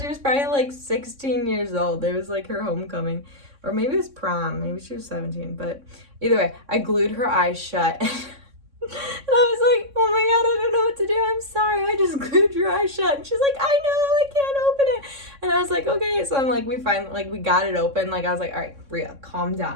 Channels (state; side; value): late; left; 3.6 ms